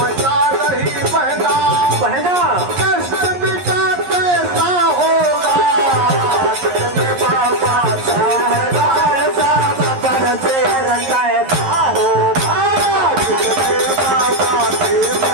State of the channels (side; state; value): left; late; 11 ms